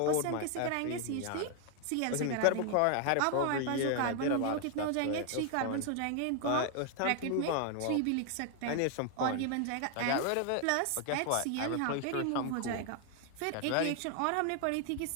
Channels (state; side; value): different; both; correlation 0.00